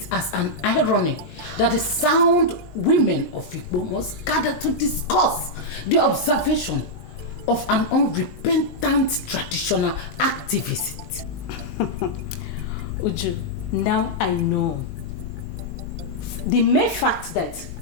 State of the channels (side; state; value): right; late; 18 ms